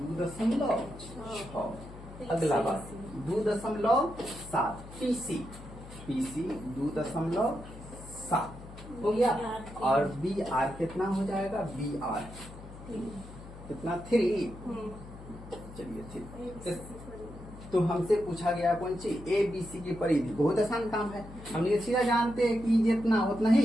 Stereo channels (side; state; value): left; noise; hum, 16 dB below the sound